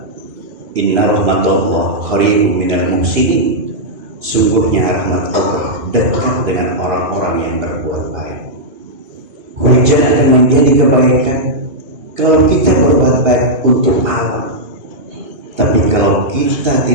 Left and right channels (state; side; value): late; left; 2.8 ms